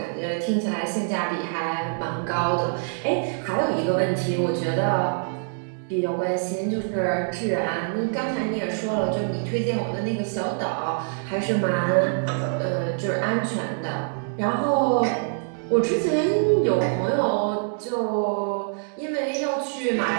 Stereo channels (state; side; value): silent; left; digital silence